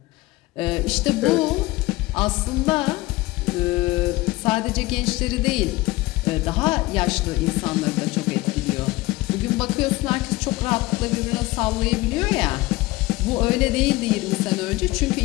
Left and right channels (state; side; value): quieter; right; 19.7 dB